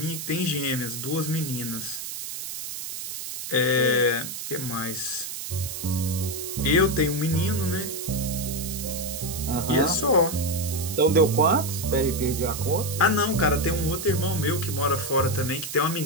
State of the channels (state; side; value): noise; right; hiss, 7 dB below the sound